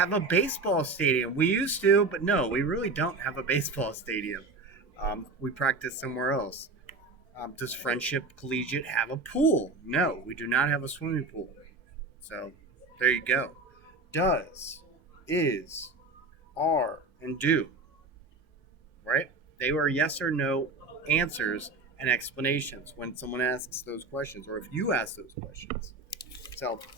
a baseball stadium? We used to, but no, we really don't have a baseball stadium. We practice somewhere else. Does Friendship Collegiate have a pool? No, we do not have a swimming pool. So there you go. Does, is, are, and do. Right? They were yes or no answers and explanations when someone asks those questions or if you ask those questions. So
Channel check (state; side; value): quieter; left; 3.4 dB